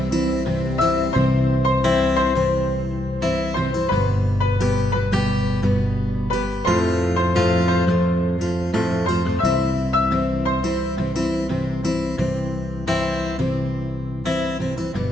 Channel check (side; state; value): both; normal; correlation 0.78